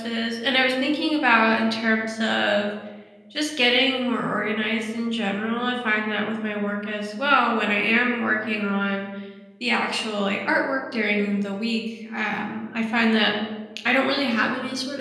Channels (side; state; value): both; identical; correlation 1.00